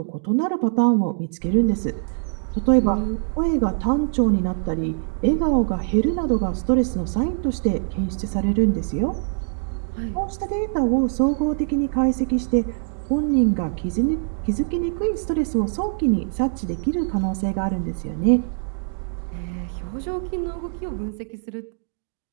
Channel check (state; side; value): silent; left; digital silence